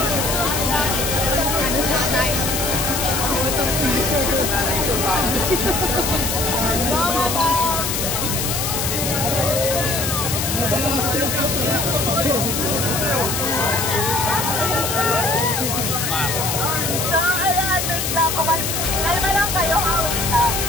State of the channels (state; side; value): noise; left; hiss, 1 dB below the sound